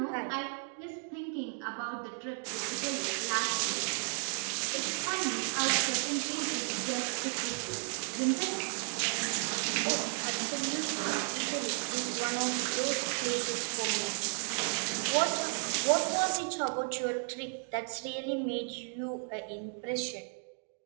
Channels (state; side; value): silent; left; 55 dB below the other